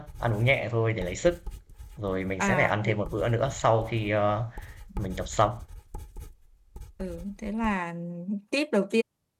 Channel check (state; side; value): identical; both; correlation 1.00